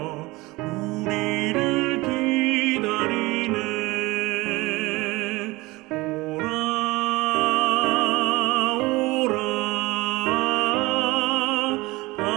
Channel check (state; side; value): quieter; left; 21.6 dB